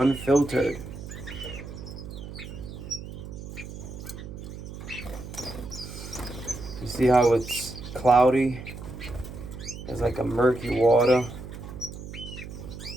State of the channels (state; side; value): noise; right; hum, 11 dB below the sound